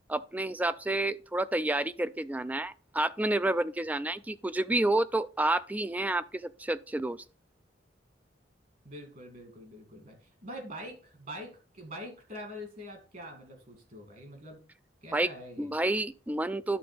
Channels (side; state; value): both; normal; correlation 0.74